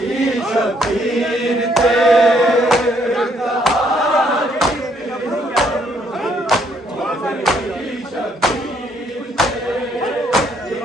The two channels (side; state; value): both; normal; correlation 0.69